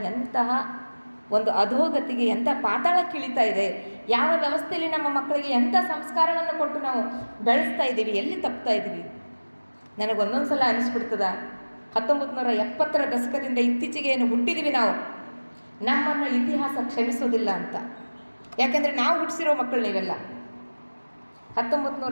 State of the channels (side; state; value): both; inverted; correlation -1.00